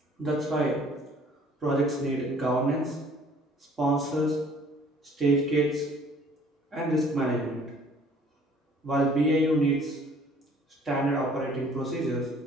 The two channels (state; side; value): normal; both; correlation 0.55